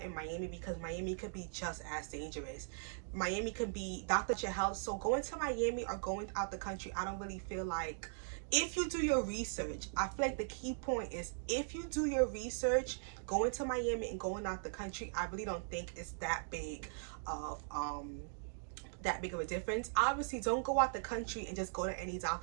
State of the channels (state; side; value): silent; left; digital silence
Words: Miami, because Miami could be just as dangerous. Miami could be doctor your health. So going to Miami or going out the country, I don't really feel like, if you do your research, I feel like the key point is, if you do your research, going to Miami and going out the country, I really don't think it's that big of a difference. Obviously, don't go out the country and just go to any